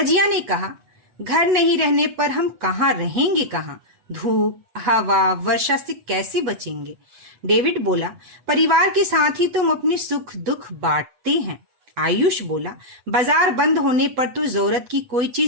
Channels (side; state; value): left; late; 8.1 ms